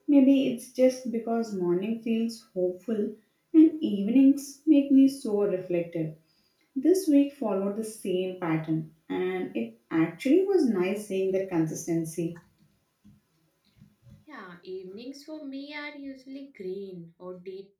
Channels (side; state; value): both; identical; correlation 1.00